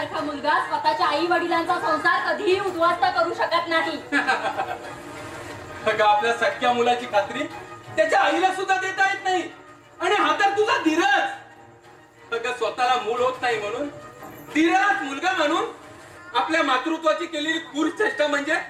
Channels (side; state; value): both; identical; correlation 1.00